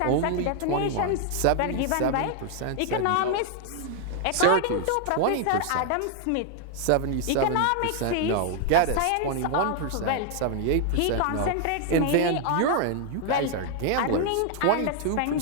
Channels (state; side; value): different; both; correlation 0.00